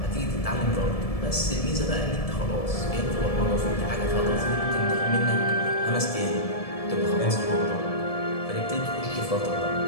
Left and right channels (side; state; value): right; late; 1.7 ms